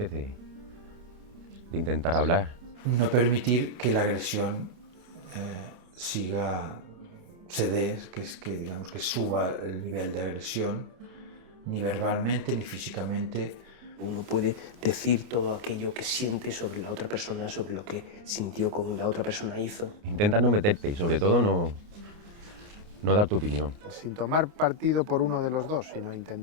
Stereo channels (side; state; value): left; late; 29 ms